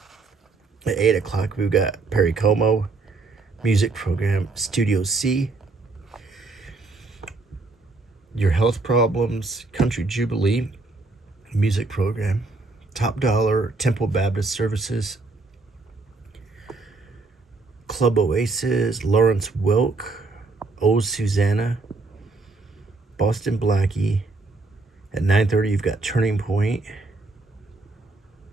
At 8 o'clock, we've got Perry Como, music program. Studio C. Your Health Problems, Country Jubilee, music program. Top Dollar, Temple Baptist Services. Club Oasis, Lawrence Welk, Oh Susanna, Boston Blackie. At 9:30, you've got Turning Point,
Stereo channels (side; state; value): left; quieter; 3.6 dB